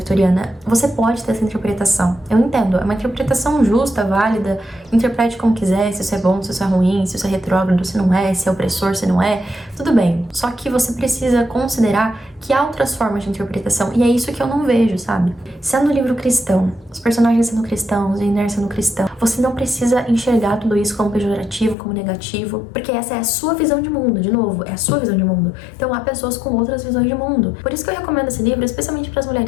Você pode ter essa interpretação. Eu entendo, é uma interpretação justa, válida, interprete como quiser, se isso é bom, se isso é ruim, se isso é retrógrado, se não é, se é opressor, se não é, tudo bem. Só que você precisa considerar que há outras formas de interpretação, e é isso que eu não vejo, sabe? Sendo um livro cristão, os personagens sendo cristãos, Jane Eyre sendo cristão, você não precisa enxergar tudo isso como pejorativo, como negativo, porque essa é a sua visão de mundo, de novo, é a sua visão de mundo. Então há pessoas com outras visões de mundo. Por isso que eu recomendo esse livro, especialmente para as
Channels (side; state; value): right; drops out; at 21.8 s